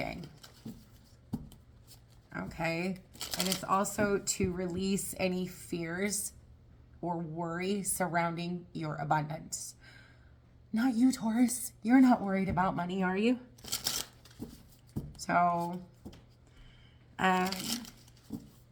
Okay, and it's also to release any fears or worry surrounding your abundance. Not you, Taurus. You're not worried about money, are you? So,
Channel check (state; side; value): identical; both; correlation 1.00